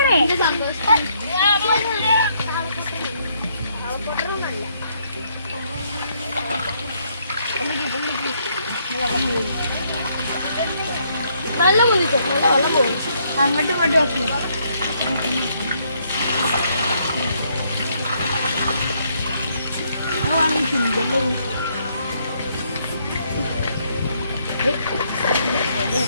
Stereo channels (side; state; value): both; inverted; correlation -0.71